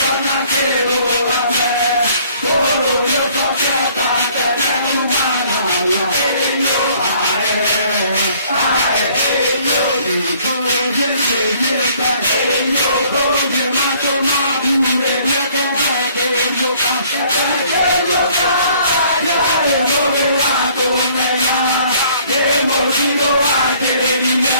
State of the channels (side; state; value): both; inverted; correlation -0.59